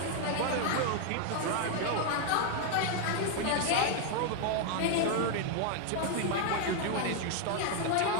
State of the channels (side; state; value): both; different; correlation 0.00